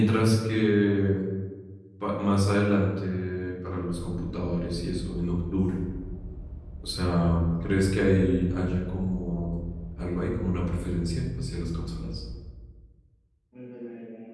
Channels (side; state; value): both; identical; correlation 1.00